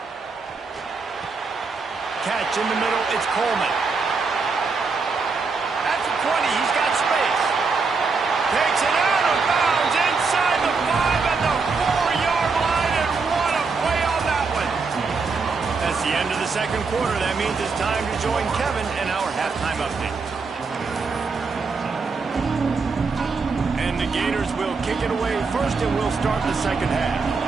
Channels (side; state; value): left; quieter; 4.6 dB